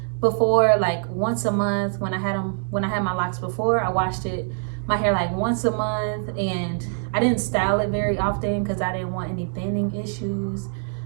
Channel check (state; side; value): silent; left; digital silence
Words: before like once a month. When I had my locks before, I washed my hair like once a month, and I didn't style it very often because I didn't want any thinning issues.